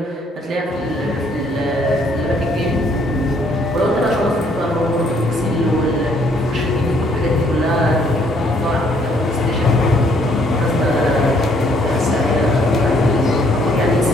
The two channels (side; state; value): both; normal; correlation 0.66